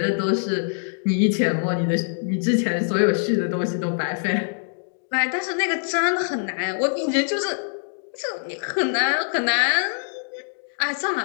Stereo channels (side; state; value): right; silent; digital silence